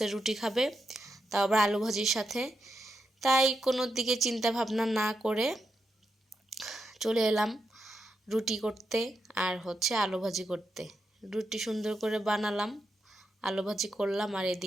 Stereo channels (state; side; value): normal; both; correlation 0.85